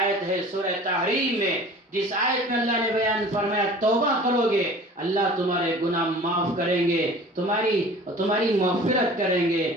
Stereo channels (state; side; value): normal; both; correlation 0.44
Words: ہے سورہ تحریم میں، جس آیت میں اللہ نے بیان فرمایا توبہ کرو گے اللہ تمہارے گناہ معاف کریں گے، تمہاری مغفرت کریں گے،